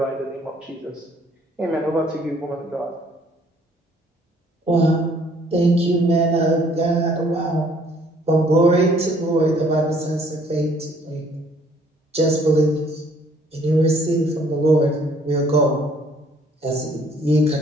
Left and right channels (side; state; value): both; normal; correlation 0.61